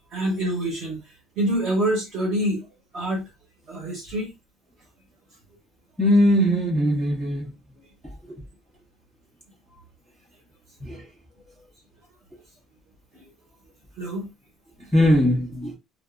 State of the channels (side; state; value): both; normal; correlation 0.59